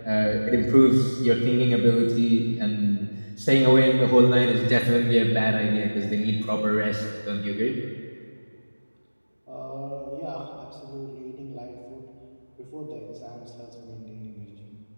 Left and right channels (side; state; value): both; inverted; correlation -1.00